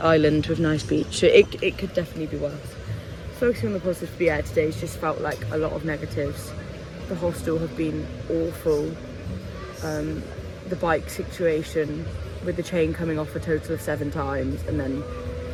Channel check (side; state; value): both; identical; correlation 1.00